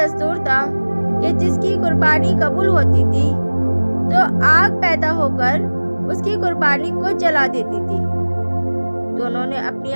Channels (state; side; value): inverted; both; correlation -1.00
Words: تھا کہ جس کی قربانی قبول ہوتی تھی تو آگ پیدا ہو کر اس کی قربانی کو جلا دیتی تھی۔ دونوں نے اپنی